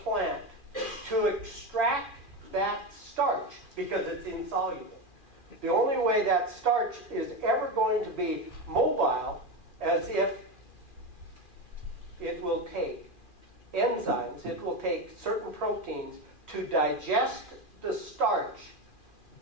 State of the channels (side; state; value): right; late; 2.4 ms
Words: to extract that starch, because it's insoluble, the only way that starch is ever going to be mobile as if it will take enzymes, it will take certain proteins to digest the starch